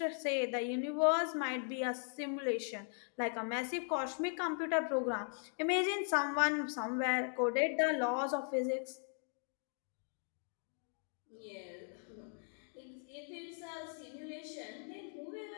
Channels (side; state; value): right; silent; 52 dB below the other